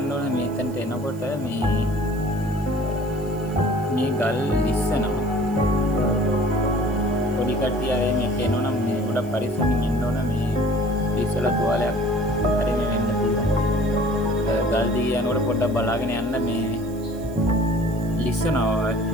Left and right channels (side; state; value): right; noise; hiss, 24 dB below the sound